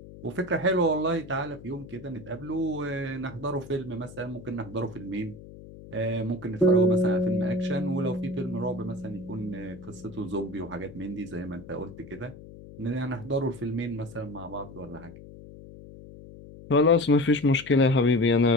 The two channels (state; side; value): noise; left; hum, 17 dB below the sound